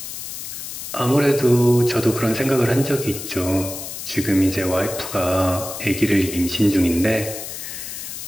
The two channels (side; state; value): left; noise; hiss, 8 dB below the sound